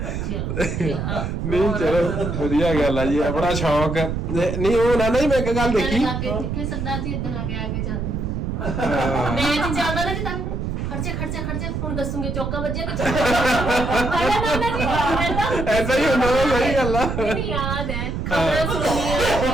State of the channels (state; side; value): noise; right; rumble, 3 dB below the sound